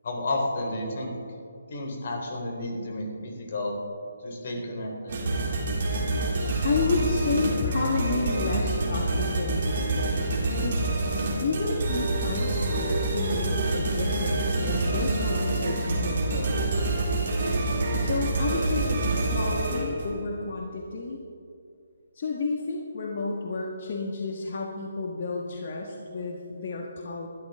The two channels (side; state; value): both; inverted; correlation -0.66